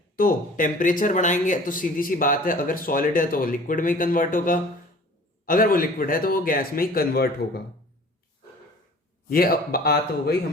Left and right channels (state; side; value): normal; both; correlation 0.47